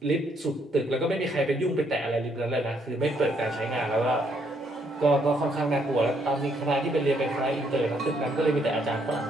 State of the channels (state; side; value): normal; both; correlation 0.71